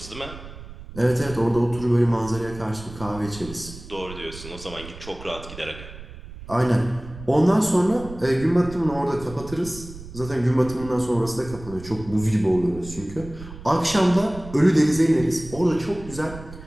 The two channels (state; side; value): noise; right; rumble, 15 dB below the sound